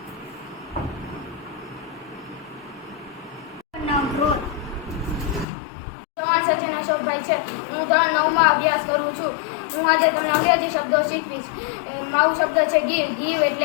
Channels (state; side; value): drops out; right; at 5.5 s